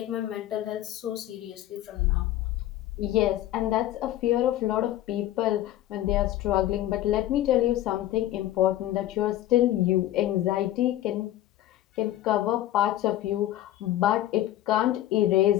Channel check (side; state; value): right; quieter; 13.8 dB